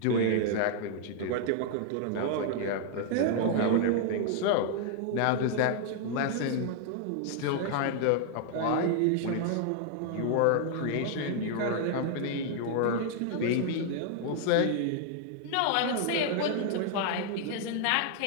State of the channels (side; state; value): both; different; correlation 0.00